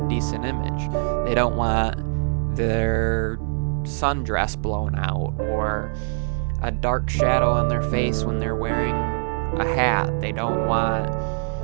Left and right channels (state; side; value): silent; left; 63 dB below the other